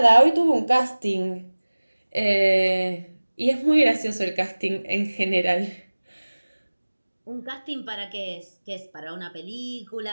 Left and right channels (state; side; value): inverted; both; correlation -1.00